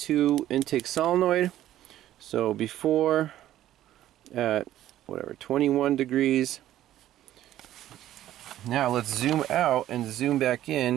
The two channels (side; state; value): left; quieter; 13.0 dB